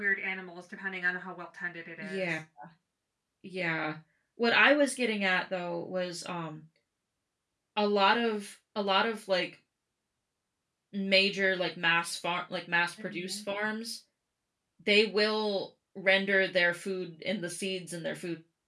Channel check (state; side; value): identical; both; correlation 1.00